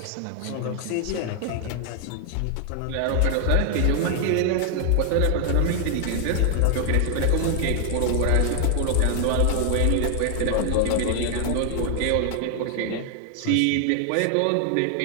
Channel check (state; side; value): different; both; correlation 0.00